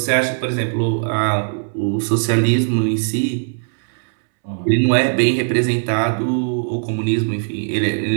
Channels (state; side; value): silent; left; 66 dB below the other